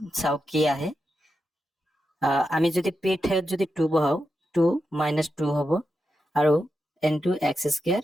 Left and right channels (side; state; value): both; normal; correlation 0.88